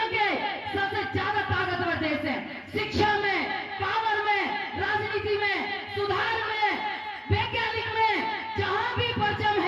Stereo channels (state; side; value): identical; both; correlation 1.00